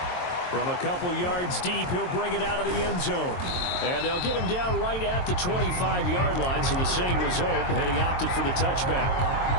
From a couple yards deep, he'll bring it out of the end zone. And they'll get him down right at the 25-yard line, so the same result, had he opted for the touchback.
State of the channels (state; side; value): late; right; 22 ms